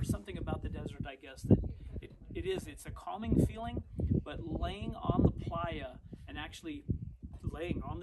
something about the desert, I guess, that it's a calming feeling, but laying on the playa and actually laying on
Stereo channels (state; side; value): identical; both; correlation 1.00